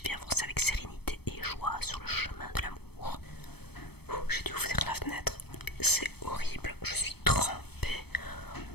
et avancer avec sérénité et joie sur le chemin de l'amour. J'ai dû ouvrir la fenêtre, c'est horrible, je suis trempée.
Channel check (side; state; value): right; late; 0.97 ms